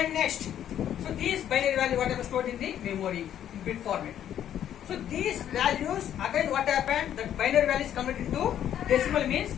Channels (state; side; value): quieter; right; 10.5 dB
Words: next, so these binary value what happened stored in the memory in bit format. So these values again what happened, that binary value is converted into decimal means